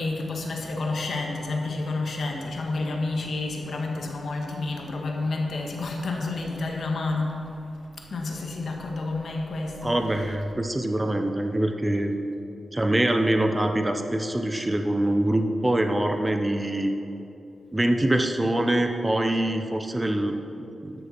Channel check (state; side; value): normal; both; correlation 0.94